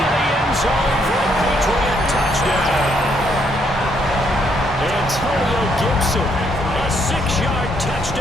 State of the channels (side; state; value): both; normal; correlation 0.72